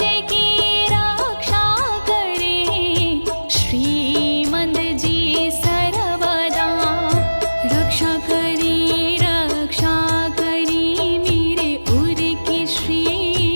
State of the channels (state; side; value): inverted; both; correlation -1.00